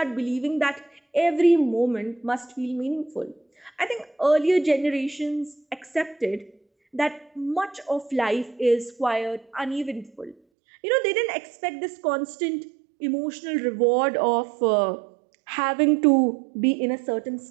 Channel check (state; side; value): drops out; left; at 10.4 s